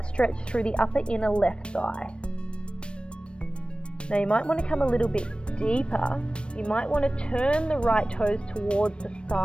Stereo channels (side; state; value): right; late; 0.057 ms